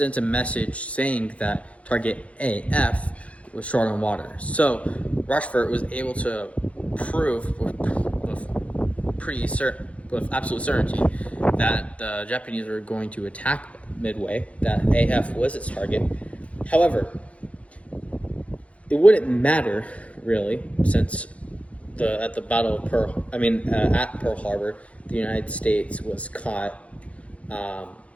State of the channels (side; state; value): right; late; 0.064 ms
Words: a message saying that target AF was short on water. So Rochefort was able to prove with absolute certainty that the Japanese were going to attack Midway, that AF was its target. However, it wouldn't matter really, since at Pearl Harbor, the United States was caught